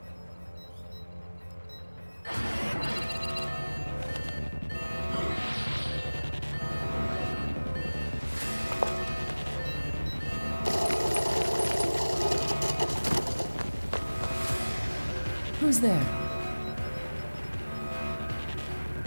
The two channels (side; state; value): both; inverted; correlation -1.00